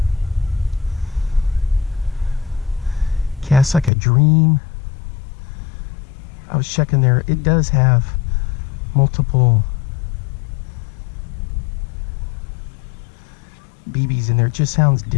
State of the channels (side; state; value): right; drops out; at 3.9 s